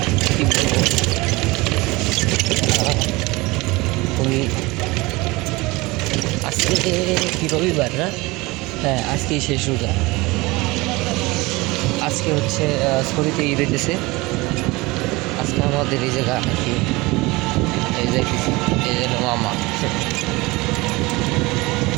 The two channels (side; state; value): left; quieter; 22.6 dB